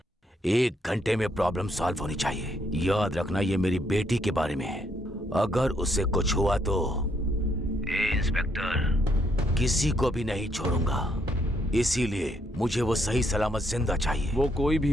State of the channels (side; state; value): both; normal; correlation 0.73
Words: 1 घंटे में प्रॉब्लम सॉल्व होनी चाहिए। याद रखना ये मेरी बेटी के बारे में है। अगर उससे कुछ हुआ तो इंस्पेक्टर किसी को भी नहीं छोड़ूंगा। इसीलिए मुझे वो सही सलामत जिंदा चाहिए। वो कोई भी